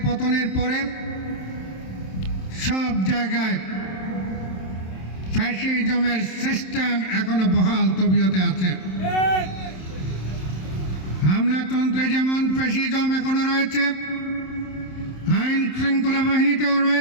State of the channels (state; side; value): late; right; 27 ms